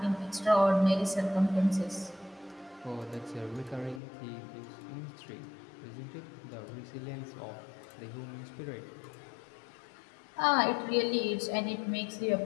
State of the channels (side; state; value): right; drops out; at 4.0 s